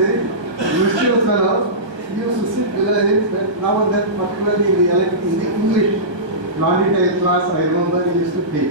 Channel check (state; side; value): late; left; 1.3 ms